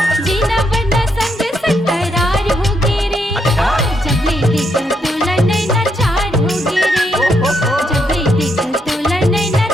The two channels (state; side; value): normal; both; correlation 0.78